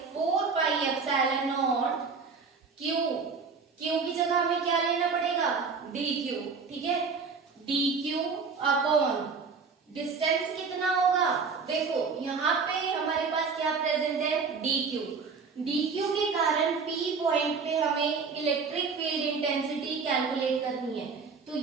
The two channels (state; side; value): quieter; left; 5.1 dB